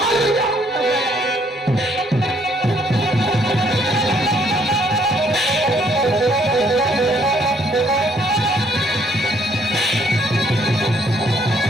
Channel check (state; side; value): normal; both; correlation 0.67